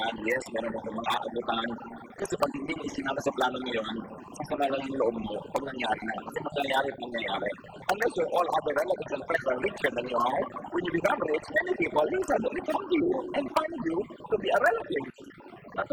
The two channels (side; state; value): both; identical; correlation 1.00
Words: yes, meron ako mga aabutan. Kasi pag hindi mo isinama sa plano mo yon, sasama lang ang loob mo pag nangyari na. Kasi mangyayari at mangyayari. Unless your all other relatives and friends are richer than you are, when you become rich, many people will suddenly come to you and find you to be a relative.